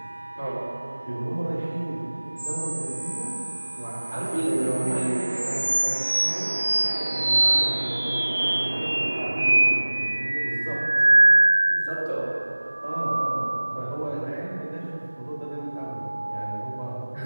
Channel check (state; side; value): inverted; both; correlation -1.00